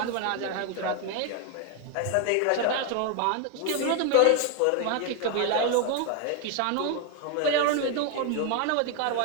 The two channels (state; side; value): different; both; correlation 0.01